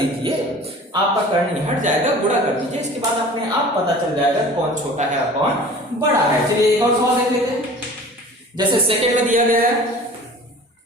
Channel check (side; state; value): both; normal; correlation 0.43